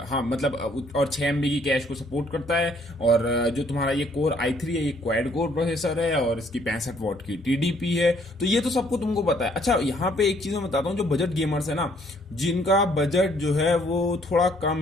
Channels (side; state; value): both; normal; correlation 0.64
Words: हाँ मतलब, और 6 MB की कैश को सपोर्ट करता है। और जो तुम्हारा ये कोर i3 है, ये क्वाड कोर प्रोसेसर है और इसकी 65 वॉट की टीडीपी है। तो ये तो सबको तुमको पता है। अच्छा, यहाँ पे एक चीज मैं बताता हूँ, जो बजट गेमर्स है ना, जिनका बजट जो है वो थोड़ा कम